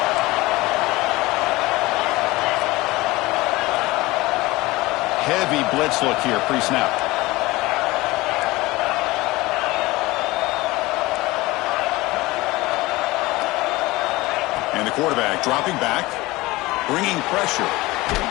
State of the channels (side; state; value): right; quieter; 20.5 dB